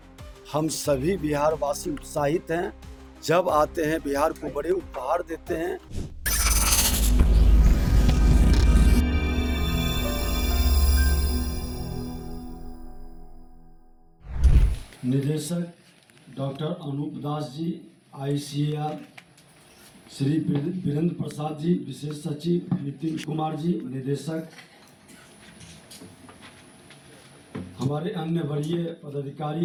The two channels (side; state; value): both; identical; correlation 1.00